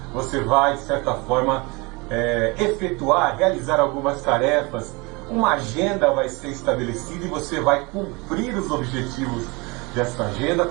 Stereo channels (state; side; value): quieter; left; 26.7 dB